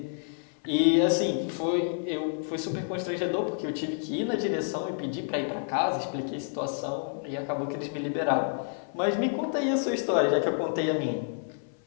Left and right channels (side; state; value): right; silent; 59 dB below the other